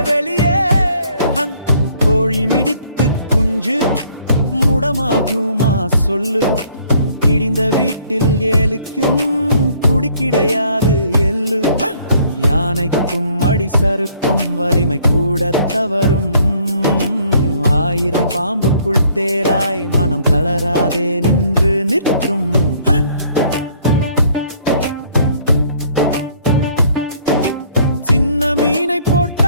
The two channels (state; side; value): inverted; both; correlation -0.61